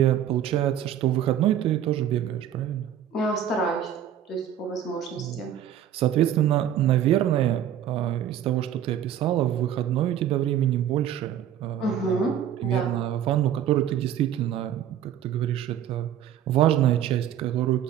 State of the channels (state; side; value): quieter; left; 10.2 dB